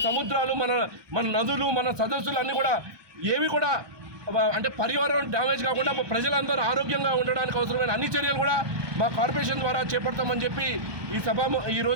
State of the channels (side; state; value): left; late; 1.2 ms